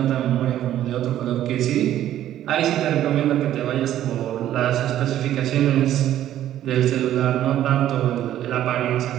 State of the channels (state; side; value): quieter; left; 12.2 dB